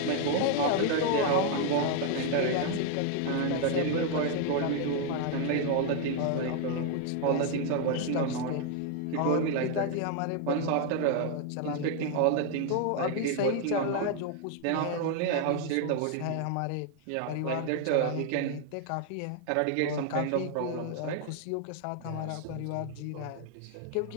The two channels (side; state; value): both; different; correlation 0.00